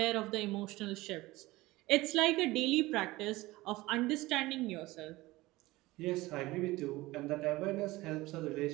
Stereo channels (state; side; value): quieter; left; 19.5 dB